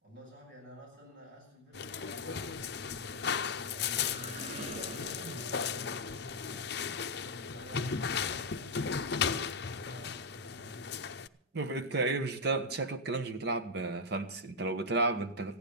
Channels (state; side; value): normal; both; correlation -0.01